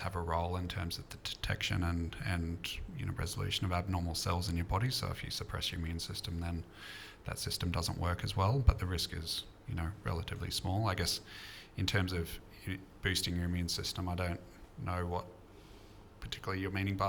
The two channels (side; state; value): both; identical; correlation 1.00